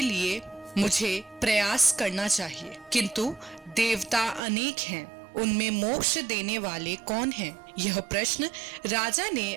लिए मुझे प्रयास करना चाहिए। किंतु देवता अनेक हैं, उनमें मोक्ष देने वाले कौन हैं? यह प्रश्न राजा ने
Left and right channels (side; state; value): left; drops out; at 4.4 s